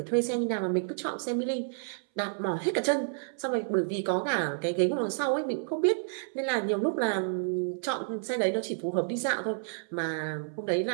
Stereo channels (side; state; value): left; silent; 58 dB below the other